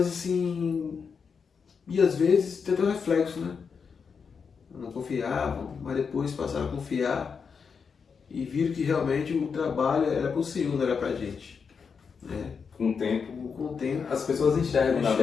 assim. E às vezes tem até um reflexo, né? Não confiavam, mas depois passaram a confiar e viram que realmente o trabalho era para o Senhor, não era para a gente. Né? Com o tempo, as pessoas enxergam, na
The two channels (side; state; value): right; quieter; 5.9 dB